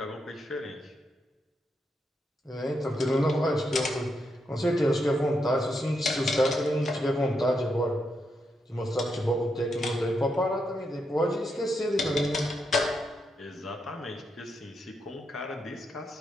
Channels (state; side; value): normal; both; correlation 0.82